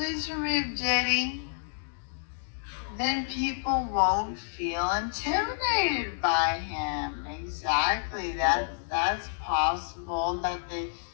remove Diddy. Then people won't feel intimidated by him. Exactly. That's possible that they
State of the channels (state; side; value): silent; right; digital silence